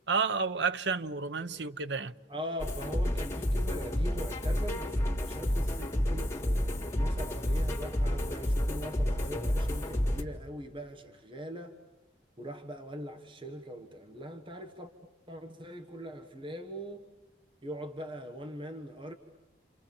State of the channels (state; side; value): normal; both; correlation 0.72